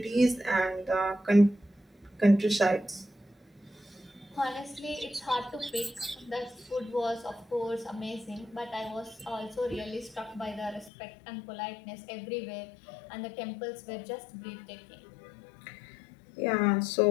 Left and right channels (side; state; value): right; drops out; at 10.9 s